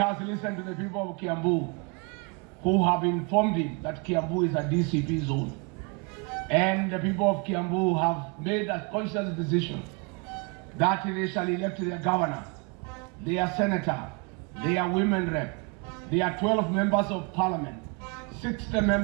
listened to the people of Kiambu who have informed him that Kiambu is a DCP zone. And the people of Kiambu have made a conscious decision that they shall elect their governor, their senator, their women rep, their 12 members of parliament, 60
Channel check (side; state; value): left; quieter; 32.0 dB